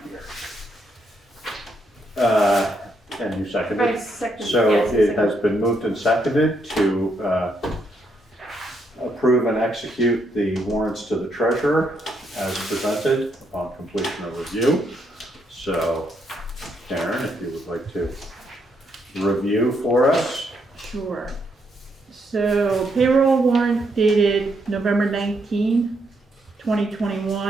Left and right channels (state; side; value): normal; both; correlation 0.76